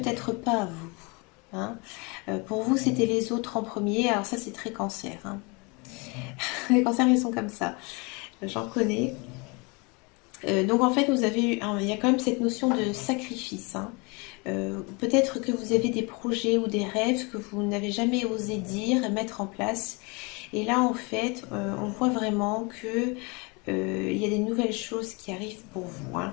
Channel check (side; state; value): right; quieter; 29.1 dB